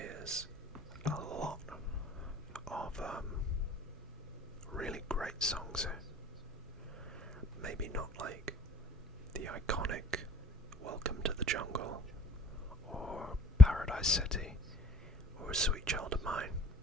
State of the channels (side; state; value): both; normal; correlation 0.58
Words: is a lot of really great songs here. Maybe not like the iconic Welcome to the Jungle or Paradise City or Sweet Child of Mine,